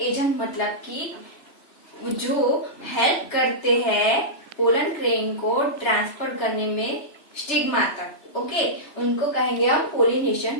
एजेंट मतलब कि जो हेल्प करते हैं पोलन ग्रेन को ट्रांसफर करने में स्टिग्मा तक। ओके, उनको कहेंगे हम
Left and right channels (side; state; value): right; late; 3.3 ms